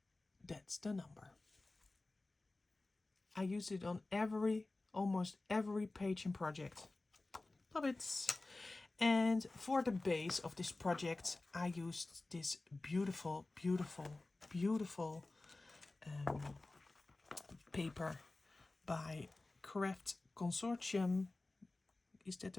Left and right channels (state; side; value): quieter; right; 3.1 dB